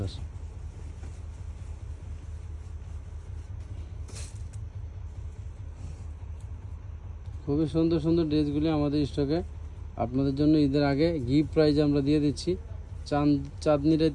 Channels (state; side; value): identical; both; correlation 1.00